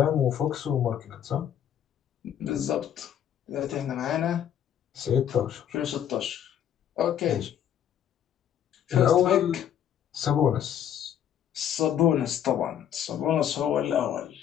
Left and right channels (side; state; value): right; quieter; 9.9 dB